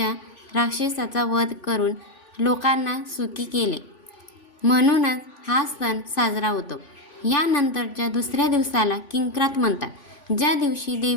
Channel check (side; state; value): right; late; 3.5 ms